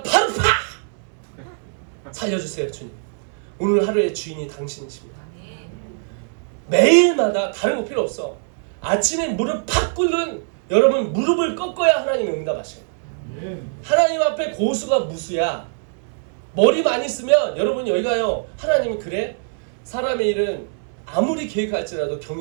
바로 팍! 살려주세요, 주님. 오늘 하루의 주인이 당신이십니다. 매일마다 다른 거 필요 없어. 아침에 무릎 팍 꿇는 여러분 무릎을 꺾어야 하나님이 응답하셔요. 하나님 앞에 고수가 무수야. 머리 많이 쓰면 여러분 여기 가요. 하나님이 그래? 사람의 일은 아무리 계획할지라도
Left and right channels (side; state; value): left; silent; digital silence